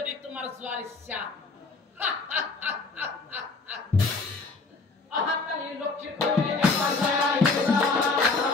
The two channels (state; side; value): quieter; right; 3.9 dB